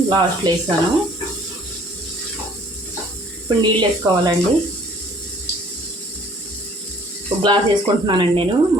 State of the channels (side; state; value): both; normal; correlation 0.56